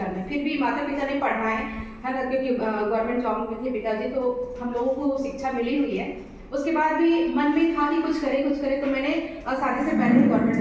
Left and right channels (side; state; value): both; identical; correlation 1.00